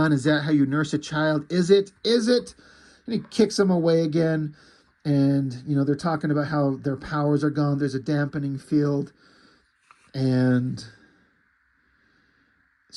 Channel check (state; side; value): identical; both; correlation 1.00